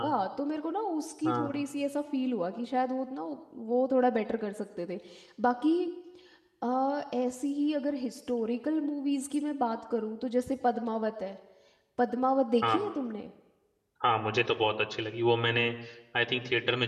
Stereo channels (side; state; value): both; identical; correlation 1.00